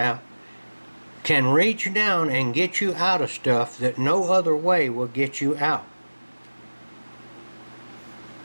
can reach down and get you out of stuff that no other way will get you out.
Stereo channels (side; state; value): both; inverted; correlation -1.00